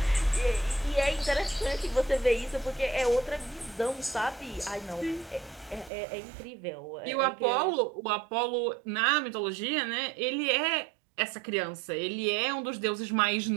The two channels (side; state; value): left; drops out; at 5.9 s